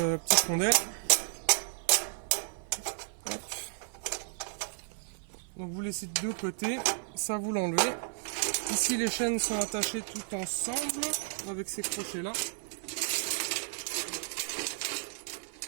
rondelle. Hop. Donc vous laissez de deux côtés, ça vous l'enlevez. Ici les chaînes sont attachées toutes ensemble avec ces crochets là.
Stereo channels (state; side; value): silent; left; 56 dB below the other